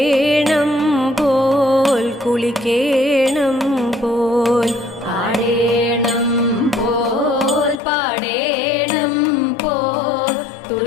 പോൽ കുളിക്കേണം പോൽ. ആടേണം പോൽ പാടേണം പോൽ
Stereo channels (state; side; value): drops out; right; at 7.8 s